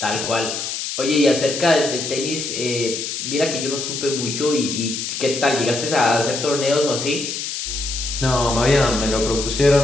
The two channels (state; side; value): noise; left; hiss, 4 dB below the sound